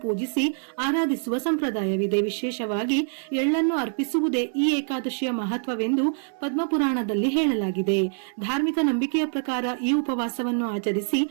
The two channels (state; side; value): silent; left; digital silence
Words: ಪೂಜಿಸಿ ಆರಾಧಿಸುವ ಸಂಪ್ರದಾಯವಿದೆ. ವಿಶೇಷವಾಗಿ ಎಳ್ಳನ್ನು ಅರ್ಪಿಸುವುದೇ ಈ ಏಕಾದಶಿಯ ಮಹತ್ವವೆಂದು ಪದ್ಮಪುರಾಣದಲ್ಲಿ ಹೇಳಲಾಗಿದೆ. ಧಾರ್ಮಿಕ ನಂಬಿಕೆಯ ಪ್ರಕಾರ ಈ ಉಪವಾಸವನ್ನು ಆಚರಿಸಿ